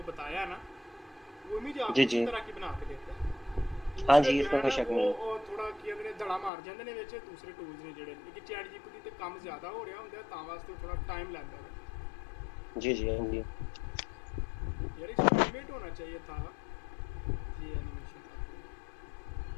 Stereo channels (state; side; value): drops out; right; at 6.5 s